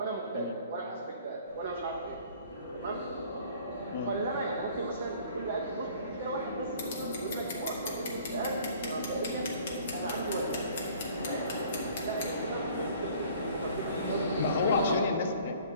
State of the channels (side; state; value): both; inverted; correlation -0.53